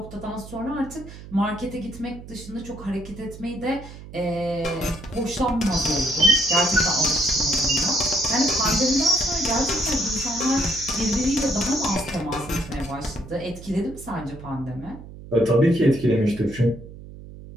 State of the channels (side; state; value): right; noise; hum, 15 dB below the sound